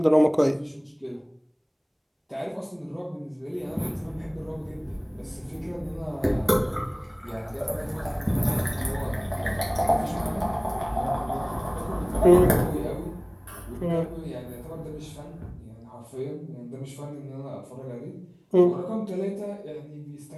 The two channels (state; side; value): identical; both; correlation 1.00